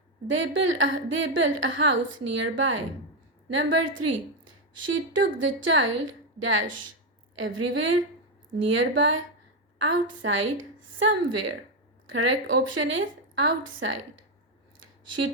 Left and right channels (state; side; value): normal; both; correlation 0.06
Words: They built a house nearby. Number 3. She took the child dash everywhere, nearby, outside, somewhere. Correct option is outside.